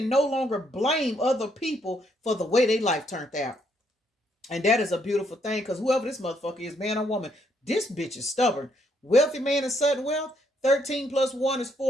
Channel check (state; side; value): normal; both; correlation 0.73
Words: no longer blame other people for the way their life turned out. And that is a beautiful thing, because whoever this motherfucker is, man or woman, this bitch is stubborn. Wealthy man and sudden wealth. 13 plus 1 is